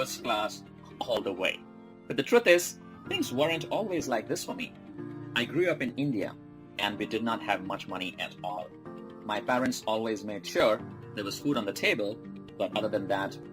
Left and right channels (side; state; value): both; identical; correlation 1.00